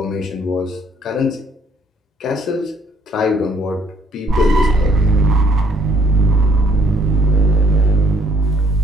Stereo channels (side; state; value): both; normal; correlation 0.63